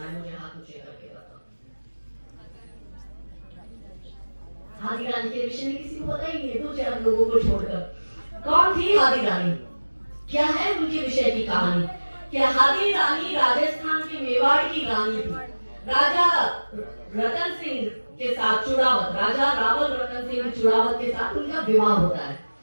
है? मुझे हाथ ऊंचे करके बताओ। हादी रानी के विषय में किसी को पता ही नहीं है, 2-4 लोगों को छोड़कर। कौन थी हादी रानी? क्या है उनके विषय की कहानी? क्या हादी रानी राजस्थान के मेवाड़ की रानी थी। राजा रतन सिंह के साथ चुड़ावत, राजा रावल रतन सिंह चुड़ावत के साथ उनका विवाह होता है।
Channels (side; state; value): both; inverted; correlation -1.00